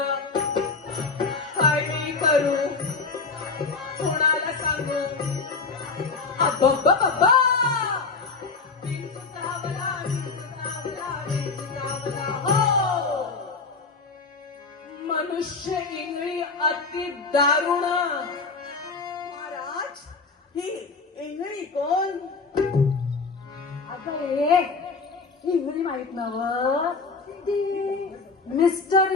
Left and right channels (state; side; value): quieter; right; 4.4 dB